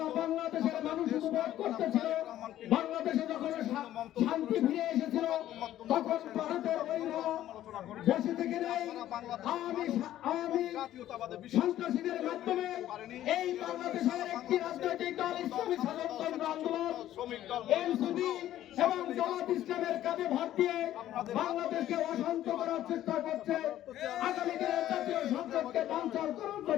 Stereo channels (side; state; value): right; quieter; 12.9 dB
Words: বাংলাদেশের মানুষ উপভোগ করতেছিল, বাংলাদেশে যখন শান্তি ফিরে এসেছিল, তখন ভারতের বৈরী বসে থেকে নেই আওয়ামী সন্ত্রাসীদের মাধ্যমে এই বাংলাদেশের একটি রাজনৈতিক দল ইসলামী স্বাধীনতা আন্দোলন এনসিপি এবং জামাত ইসলামের কাঁধে ভর দিয়ে বাংলাদেশকে অশান্ত করার চেষ্টা করছে। আগামী দিনে জাতীয় সংসদকে বানচাল করার